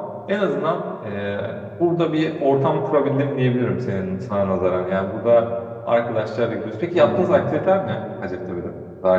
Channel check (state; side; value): identical; both; correlation 1.00